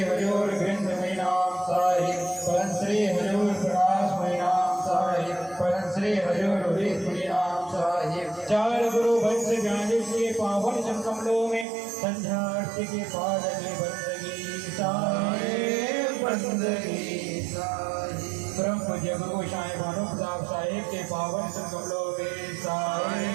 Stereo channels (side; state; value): left; drops out; at 11.7 s